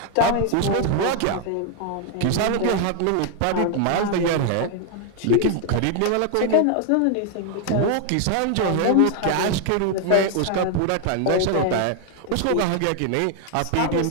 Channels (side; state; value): both; different; correlation 0.00